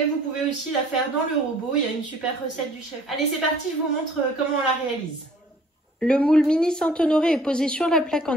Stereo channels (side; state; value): both; normal; correlation 0.55